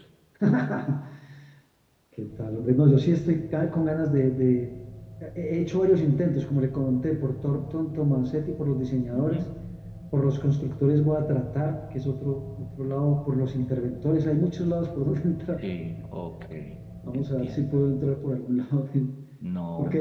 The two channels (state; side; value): identical; both; correlation 1.00